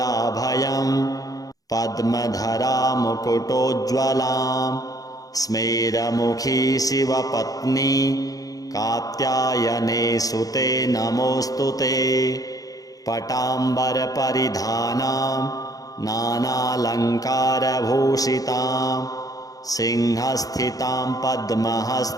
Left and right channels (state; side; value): late; right; 0.17 ms